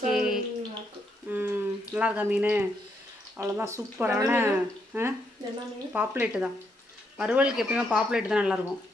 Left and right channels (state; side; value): normal; both; correlation 0.77